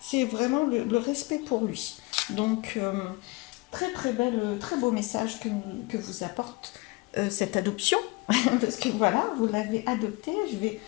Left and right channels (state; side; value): quieter; right; 24.5 dB